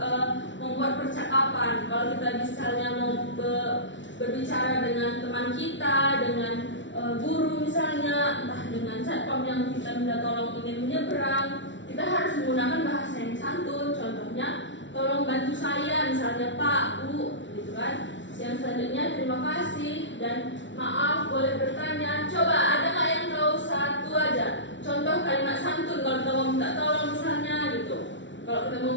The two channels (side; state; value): right; late; 0.55 ms